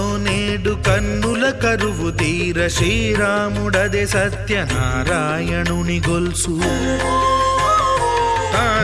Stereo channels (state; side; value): identical; both; correlation 1.00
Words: నేడు కన్నుల కరువు తీర శ్రీరాముడదే సత్యనారాయణుని గొల్సు.